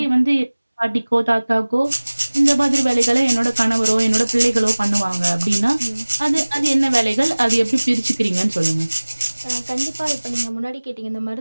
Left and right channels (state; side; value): inverted; both; correlation -1.00